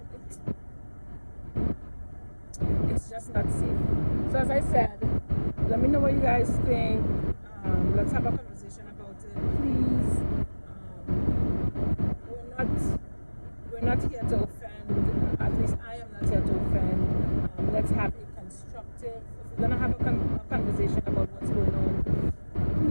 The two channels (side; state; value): both; inverted; correlation -1.00